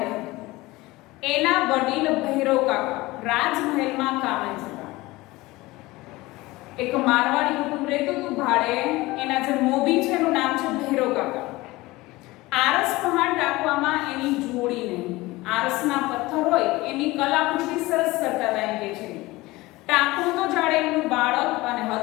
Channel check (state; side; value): quieter; right; 20.3 dB